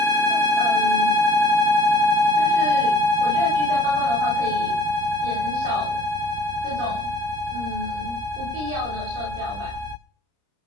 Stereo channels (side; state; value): left; late; 30 ms